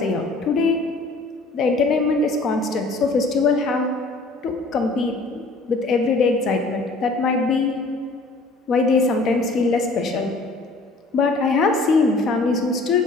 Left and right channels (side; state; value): right; quieter; 3.2 dB